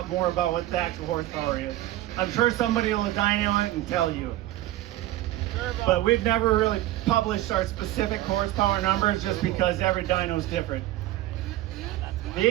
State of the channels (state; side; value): quieter; left; 15.3 dB